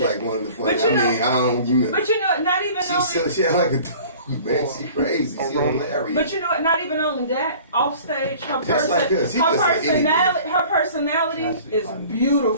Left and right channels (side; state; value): both; inverted; correlation -0.47